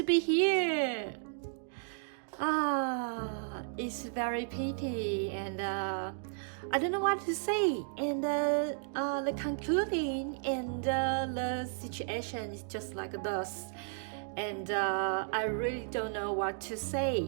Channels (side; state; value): left; silent; digital silence